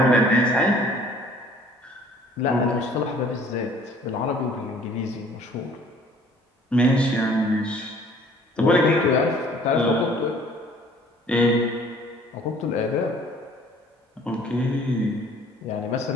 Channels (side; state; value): both; normal; correlation 0.54